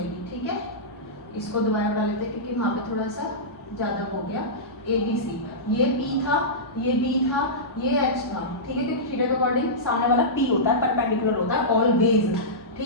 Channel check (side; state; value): both; normal; correlation -0.15